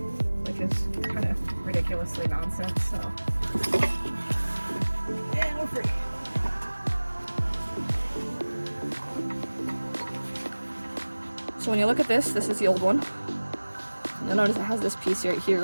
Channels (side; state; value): both; inverted; correlation -1.00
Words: which is kind of ridiculously nonsense. So, and we're free. So when you look at this is the old one. You'll notice it has this piece right